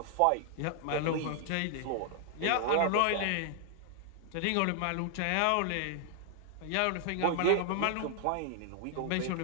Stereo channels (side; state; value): both; different; correlation 0.00